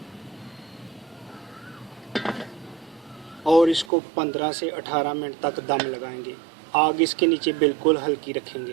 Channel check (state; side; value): drops out; left; at 3.9 s